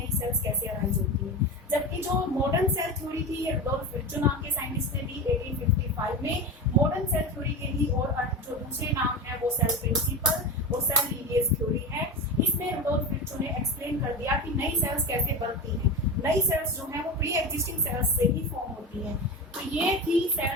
सेल्स कैसे अराइज होती है। जबकि जो मॉडर्न सेल थ्योरी थी ये रुडोल्फ विर्चू नाम के साइंटिस्ट ने दी 1855 में। मॉडर्न सेल थ्योरी के भी और जो दूसरे नाम है वो सेल प्रिंसिपल और सेल लीनिएज थ्योरी है। इसमें रुडोल्फ विर्चू ने एक्सप्लेन कर दिया कि नई सेल्स कैसे बनती हैं। नई सेल्स जो है वो प्री एग्जिस्टिंग सेल्स से ही फॉर्म होती हैं। तो ये थी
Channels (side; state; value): both; normal; correlation 0.24